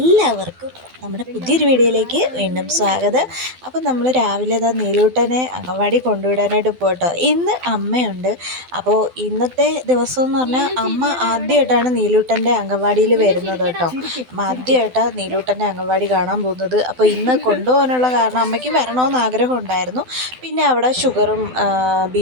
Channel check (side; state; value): left; late; 12 ms